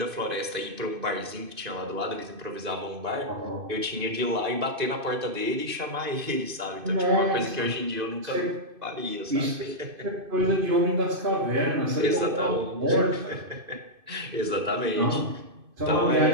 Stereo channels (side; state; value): left; late; 2.5 ms